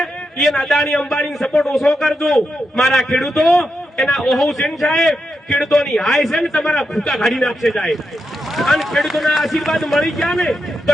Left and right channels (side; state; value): both; normal; correlation 0.85